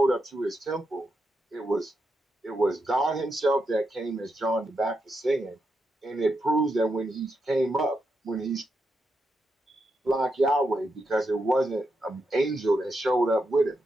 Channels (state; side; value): normal; both; correlation 0.84